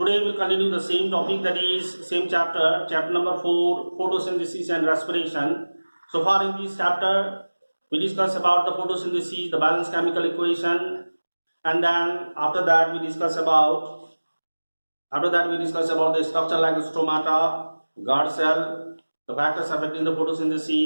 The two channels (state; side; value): inverted; both; correlation -1.00